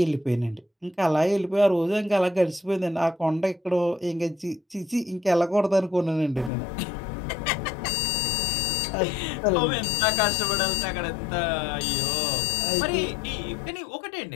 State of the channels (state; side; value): drops out; right; at 6.5 s